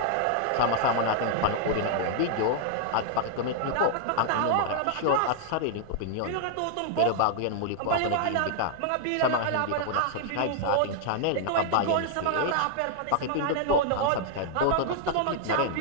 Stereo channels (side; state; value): both; different; correlation -0.01